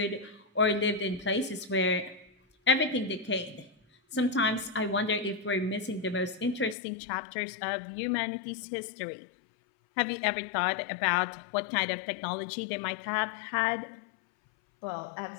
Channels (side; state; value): right; drops out; at 6.8 s